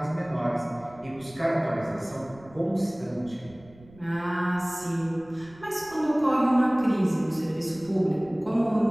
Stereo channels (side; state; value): right; noise; rumble, 23 dB below the sound